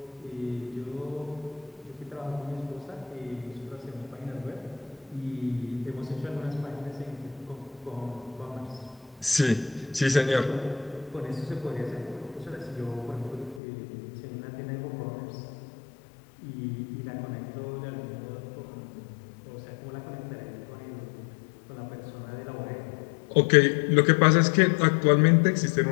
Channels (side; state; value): right; drops out; at 13.6 s